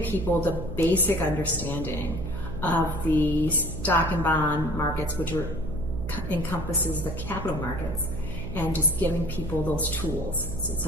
people the basic understanding of the stock and bond markets, which encompasses the capital markets, and just giving people those tools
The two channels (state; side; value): noise; right; hum, 7 dB below the sound